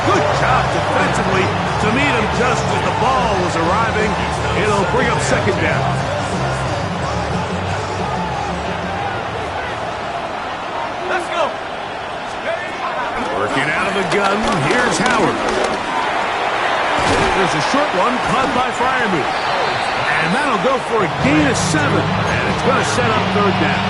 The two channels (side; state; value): both; identical; correlation 1.00